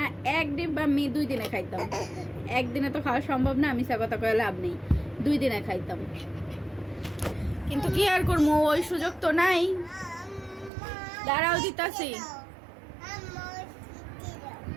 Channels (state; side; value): drops out; left; at 10.7 s